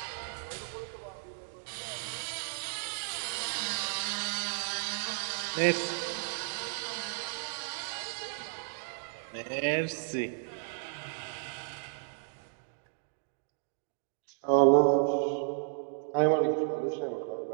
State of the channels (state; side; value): silent; left; digital silence